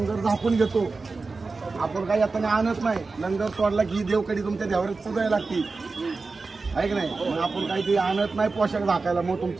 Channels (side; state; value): left; quieter; 4.0 dB